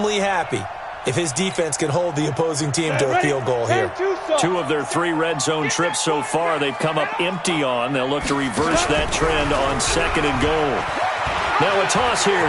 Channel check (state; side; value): identical; both; correlation 1.00